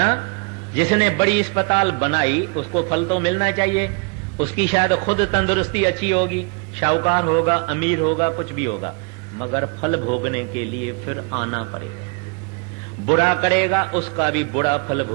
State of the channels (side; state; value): left; quieter; 33.0 dB